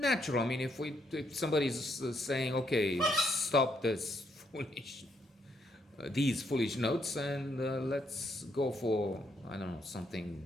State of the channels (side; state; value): both; normal; correlation 0.74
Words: I mean, if somebody's saying, okay, stop this these foolish notes and let's go for, I don't know,